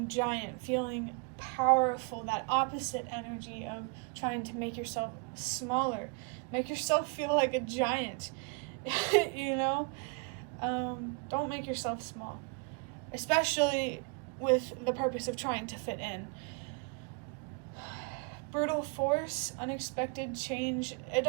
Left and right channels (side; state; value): left; quieter; 34.1 dB